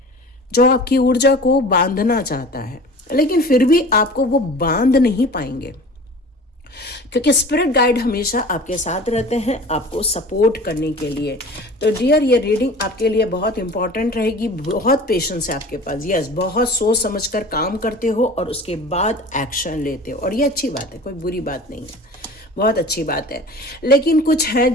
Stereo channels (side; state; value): both; normal; correlation 0.40